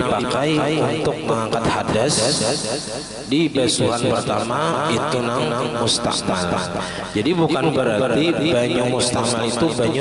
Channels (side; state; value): both; identical; correlation 1.00